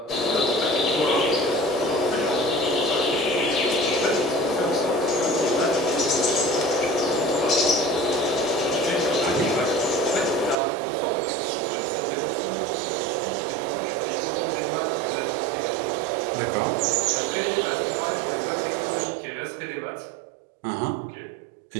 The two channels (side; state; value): left; drops out; at 10.6 s